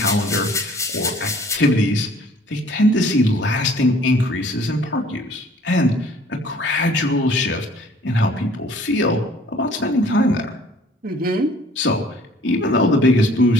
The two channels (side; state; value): both; normal; correlation 0.54